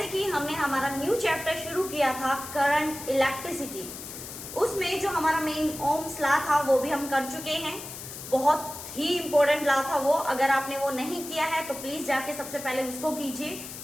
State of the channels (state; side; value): noise; left; hiss, 11 dB below the sound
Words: कि हमने हमारा न्यू चैप्टर शुरू किया था करंट इलेक्ट्रिसिटी, उसमें जो हमारा मेन ओम्स लॉ था वो भी हम कर चुके हैं। बहुत ही इंपॉर्टेंट लॉ था वो। अगर आपने वो नहीं किया है तो प्लीज जाके सबसे पहले उसको कीजिए,